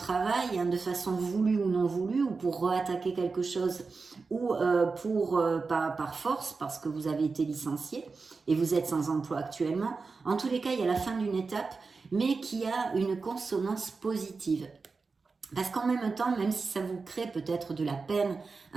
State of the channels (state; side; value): quieter; left; 4.4 dB